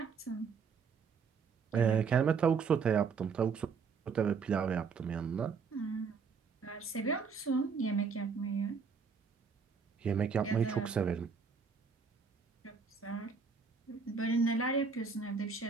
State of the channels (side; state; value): left; quieter; 5.5 dB